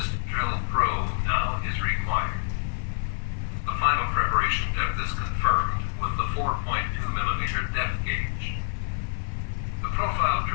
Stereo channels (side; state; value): right; silent; 56 dB below the other